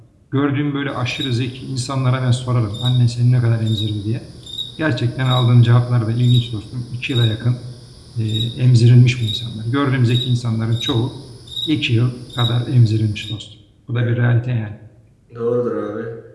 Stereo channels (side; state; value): both; identical; correlation 1.00